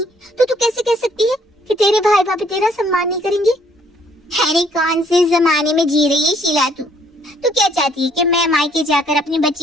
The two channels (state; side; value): normal; both; correlation 0.65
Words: तो तू कैसे कह सकती है कि तेरे भाई भाभी तेरा सम्मान नहीं करेंगे? अरे कौन से जमाने में जी रही है शीला तू? तू क्या चाहती है कि मैं मायके जाकर अपनी